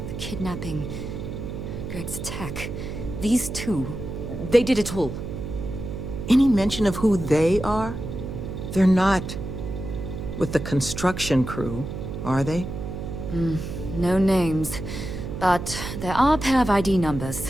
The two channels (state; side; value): noise; right; hum, 7 dB below the sound